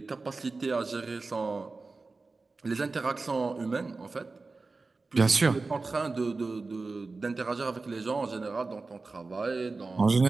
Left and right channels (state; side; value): quieter; left; 3.8 dB